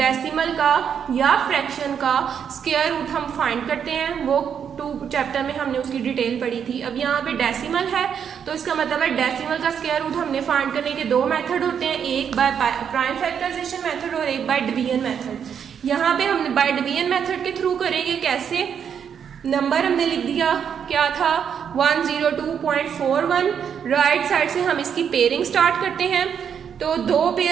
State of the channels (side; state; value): left; quieter; 7.8 dB